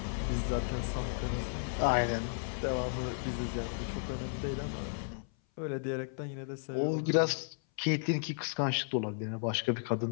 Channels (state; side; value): silent; right; 55 dB below the other